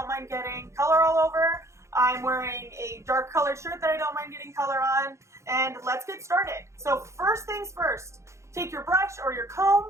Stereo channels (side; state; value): left; late; 0.14 ms